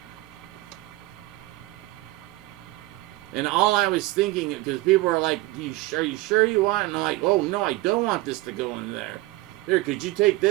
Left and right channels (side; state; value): left; quieter; 19.9 dB